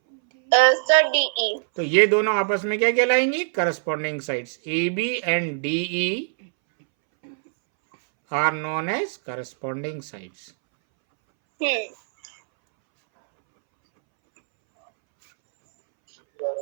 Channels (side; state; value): left; silent; 64 dB below the other